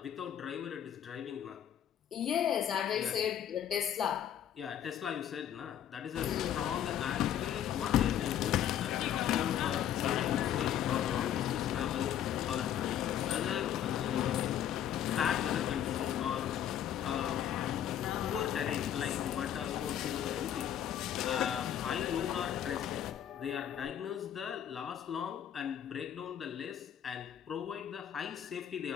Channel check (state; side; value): quieter; right; 10.1 dB